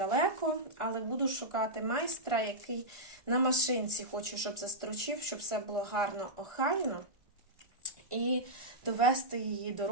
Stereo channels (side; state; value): left; late; 1.4 ms